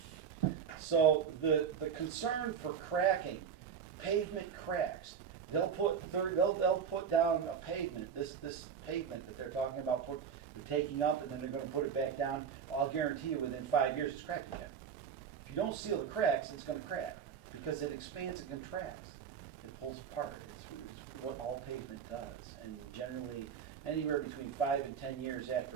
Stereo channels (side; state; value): left; quieter; 7.2 dB